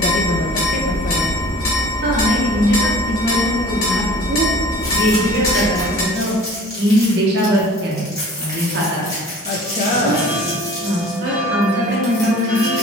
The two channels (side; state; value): both; normal; correlation 0.46